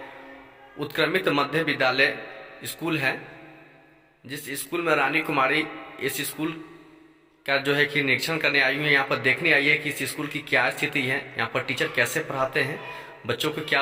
उत्क्रमित मध्य विद्यालय स्कूल है, जिस स्कूल में रानी कुमारी इस स्कूल का जो है कि निरीक्षण करने आई हुई है। यहाँ पर देखने आई है कि इस स्कूल की क्या स्थिति है, यहाँ पर टीचर कैसे पढ़ाते हैं, बच्चों को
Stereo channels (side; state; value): both; identical; correlation 1.00